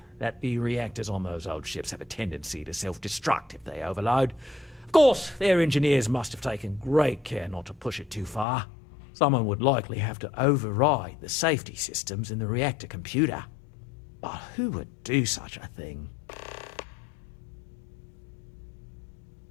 that the reactors on those old ships have a tendency to self-destruct if they overload. Of course, their engineers must have taken great care not to push it too far. Someone would likely have to override the safety systems in the reactor computer. But who would do such a thing?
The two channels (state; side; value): drops out; right; at 8.5 s